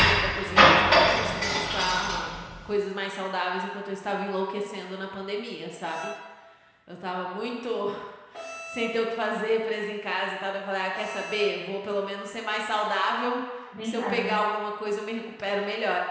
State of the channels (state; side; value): identical; both; correlation 1.00